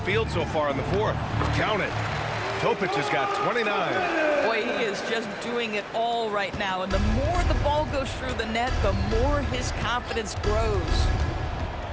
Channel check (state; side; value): identical; both; correlation 1.00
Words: field so far in the fourth. Count it. Topic has got 29. Boy, he is just doing it all right now. And the more the ball goes through the net, the more his confidence grows.